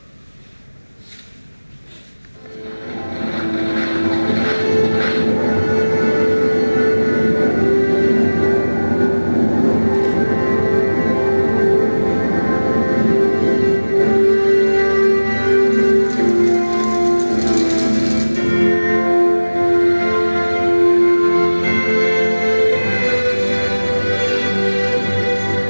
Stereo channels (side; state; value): both; inverted; correlation -1.00